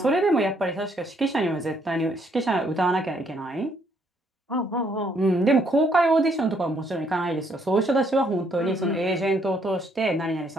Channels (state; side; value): normal; both; correlation 0.70